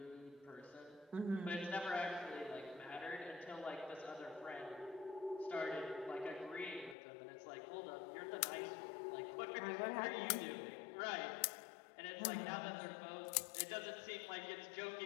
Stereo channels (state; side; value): drops out; right; at 7.0 s